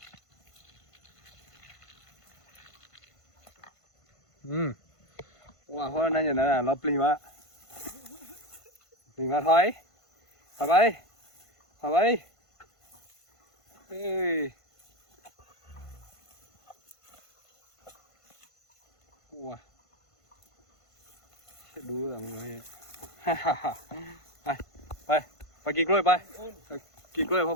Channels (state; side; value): late; right; 1.5 ms